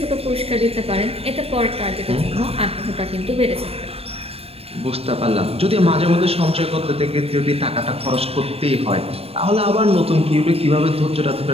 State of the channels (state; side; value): late; left; 0.29 ms